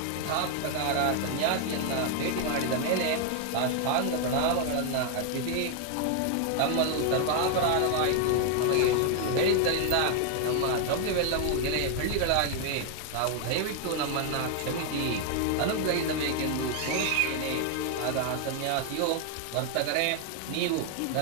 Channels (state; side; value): different; both; correlation 0.00